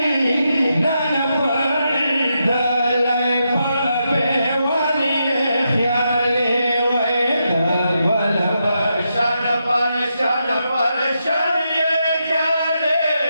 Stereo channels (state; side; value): inverted; both; correlation -0.84